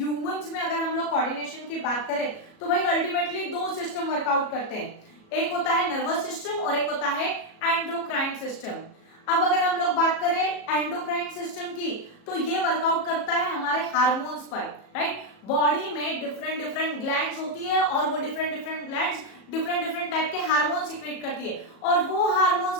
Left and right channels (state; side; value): late; right; 37 ms